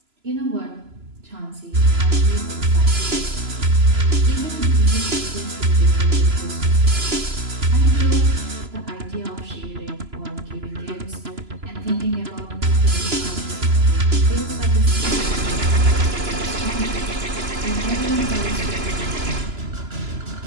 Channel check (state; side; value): late; left; 3.0 ms